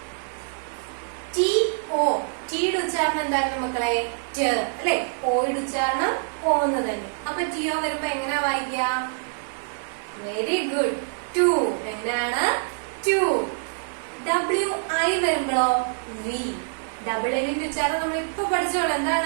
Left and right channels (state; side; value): silent; left; digital silence